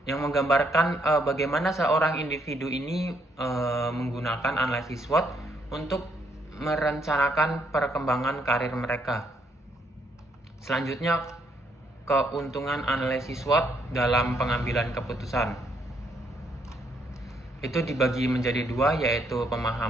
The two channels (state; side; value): normal; both; correlation 0.72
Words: yang menggambarkan bagaimana seorang individu ini menggunakan analisis SWOT untuk merencanakan perkembangan karir mereka. Selanjutnya, keuntungan analisis SWOT dalam pengambilan keputusan. Itu dibagi menjadi dua, yaitu